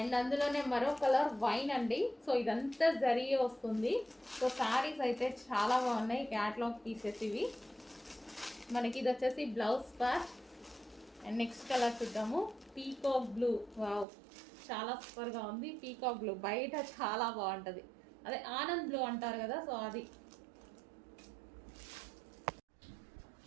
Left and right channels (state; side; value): drops out; left; at 14.1 s